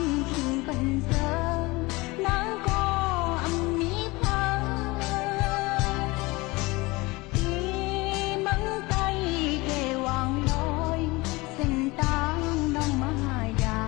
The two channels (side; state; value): right; quieter; 23.1 dB